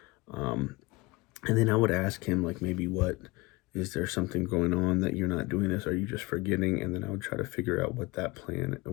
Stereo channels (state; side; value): quieter; right; 23.1 dB